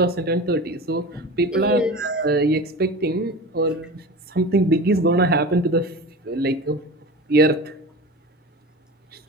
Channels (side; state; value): both; normal; correlation 0.32